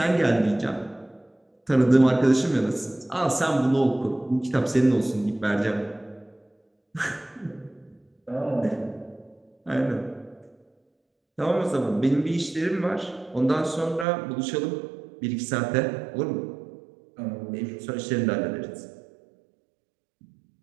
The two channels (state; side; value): drops out; left; at 14.1 s